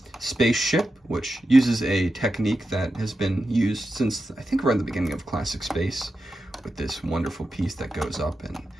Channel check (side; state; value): both; normal; correlation 0.90